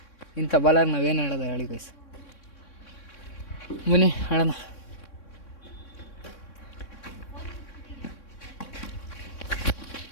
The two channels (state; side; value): late; right; 3.6 ms